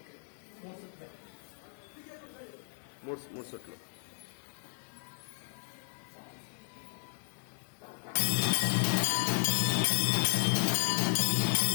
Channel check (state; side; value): silent; right; digital silence